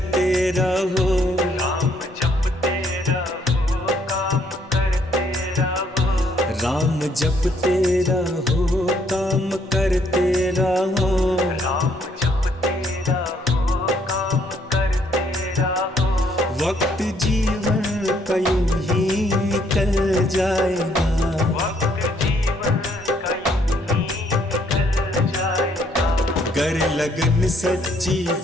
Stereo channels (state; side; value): normal; both; correlation 0.68